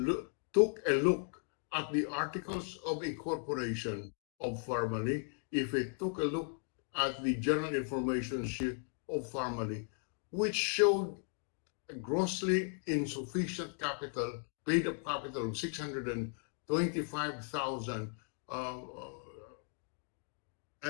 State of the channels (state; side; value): silent; right; 53 dB below the other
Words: took a look at the articles of incorporation of Pharmaly, if he took a look at the general information sheet of Pharmaly, which showed a grossly insufficient capital, paid-up capital of 625,000,